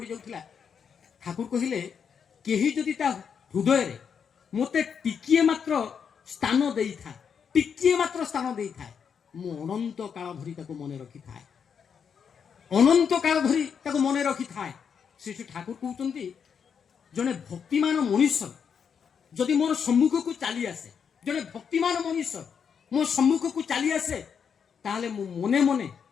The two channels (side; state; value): right; quieter; 7.0 dB